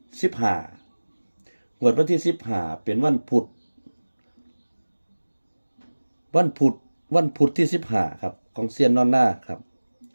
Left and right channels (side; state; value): both; inverted; correlation -1.00